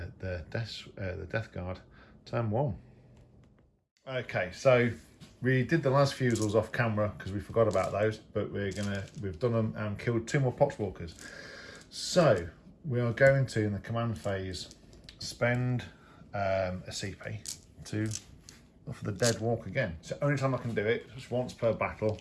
the Death Guard. Turn 1. Okay, so we did the last fusils off camera because we forgot about those, but we've done them and killed 2 more Poxwalkers. So we are going to, in the command phase, spend a CP to for the dead walk again. It's the only time I can do it, just once per battle,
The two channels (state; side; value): identical; both; correlation 1.00